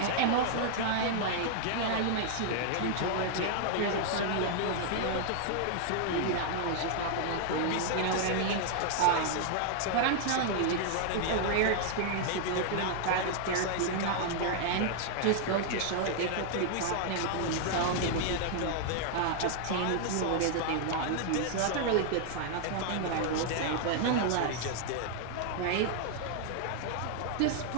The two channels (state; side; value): different; both; correlation 0.00